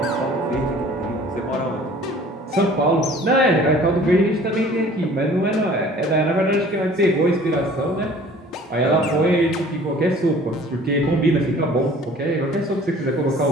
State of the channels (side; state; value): both; normal; correlation 0.50